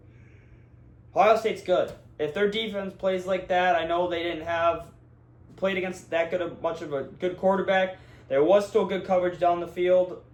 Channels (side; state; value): both; identical; correlation 1.00